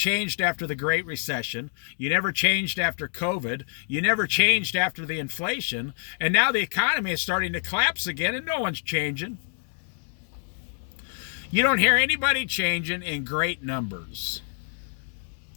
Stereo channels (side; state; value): right; silent; 60 dB below the other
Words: after the Great Recession. You never changed after COVID. You never changed after the inflation. And now the economy is starting to collapse again and no one's changing. You don't hear anybody changing in great numbers.